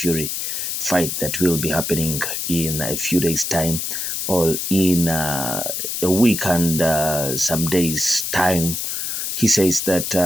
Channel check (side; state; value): left; noise; hiss, 3 dB below the sound